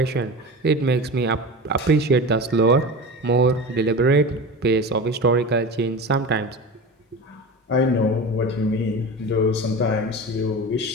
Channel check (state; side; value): normal; both; correlation 0.30